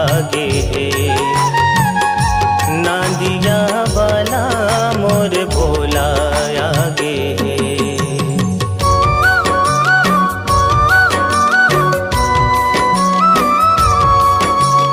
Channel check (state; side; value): identical; both; correlation 1.00